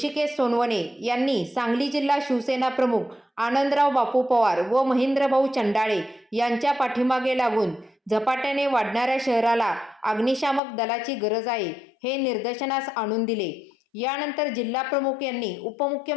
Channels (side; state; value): right; drops out; at 10.6 s